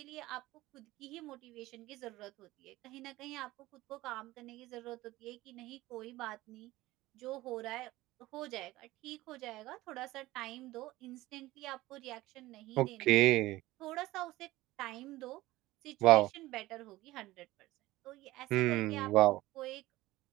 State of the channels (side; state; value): left; quieter; 17.9 dB